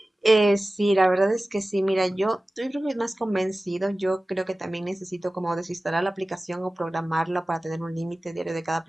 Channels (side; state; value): both; normal; correlation 0.97